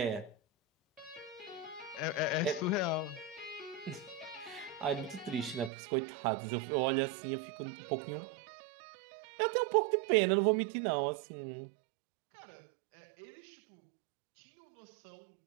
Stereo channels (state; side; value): drops out; left; at 5.7 s